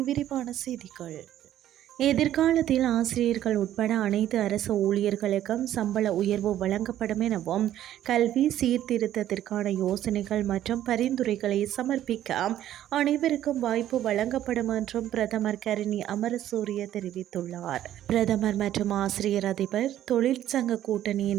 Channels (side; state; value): left; quieter; 12.1 dB